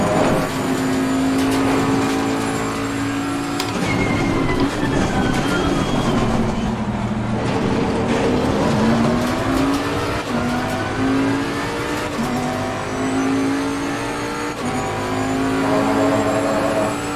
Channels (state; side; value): identical; both; correlation 1.00